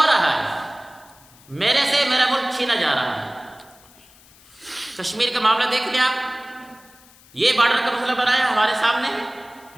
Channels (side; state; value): left; noise; hiss, 26 dB below the sound